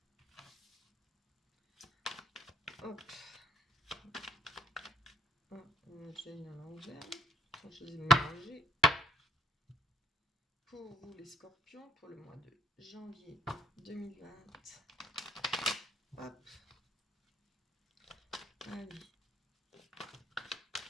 Hop. J'ai une à l'envers. Je les ai mélangés. Pour vous les scorpions, pour le mois de janvier 2020. Hop. Allez.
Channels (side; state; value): both; normal; correlation 0.58